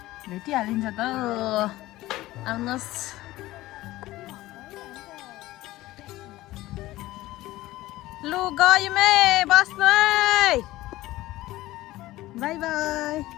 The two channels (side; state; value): right; quieter; 17.1 dB